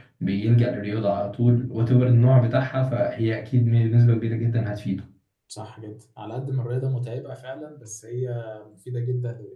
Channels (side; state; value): both; identical; correlation 1.00